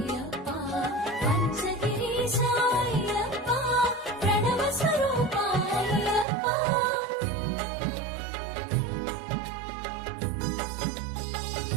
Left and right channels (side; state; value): left; drops out; at 6.2 s